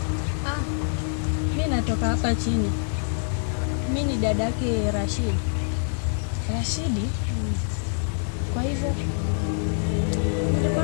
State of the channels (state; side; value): silent; right; digital silence